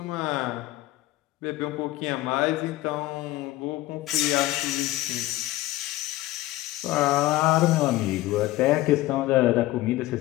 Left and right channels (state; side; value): quieter; right; 17.1 dB